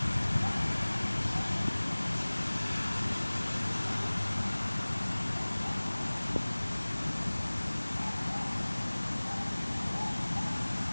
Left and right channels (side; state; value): both; inverted; correlation -1.00